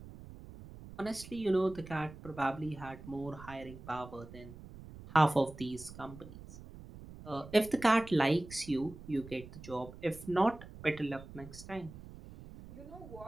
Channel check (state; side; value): noise; right; rumble, 16 dB below the sound